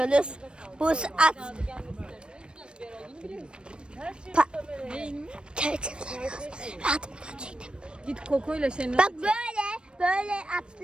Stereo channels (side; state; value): left; late; 0.055 ms